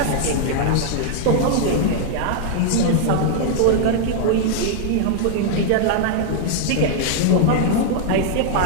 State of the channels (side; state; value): both; different; correlation 0.00